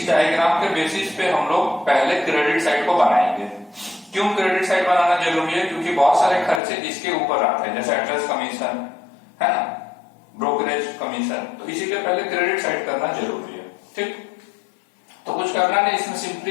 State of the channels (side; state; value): right; drops out; at 6.6 s